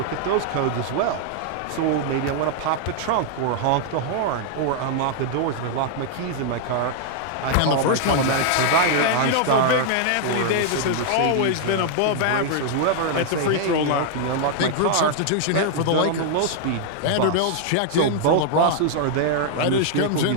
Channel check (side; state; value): both; different; correlation 0.00